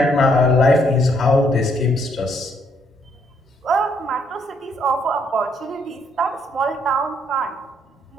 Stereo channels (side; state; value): both; normal; correlation 0.70